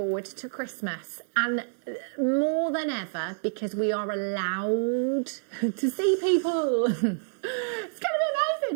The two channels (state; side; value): silent; left; digital silence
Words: to Christmas. And more than ever, because we are allowed to see people. It's going to be